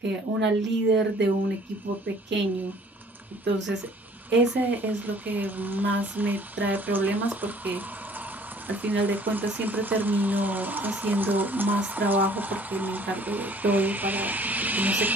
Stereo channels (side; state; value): both; normal; correlation 0.55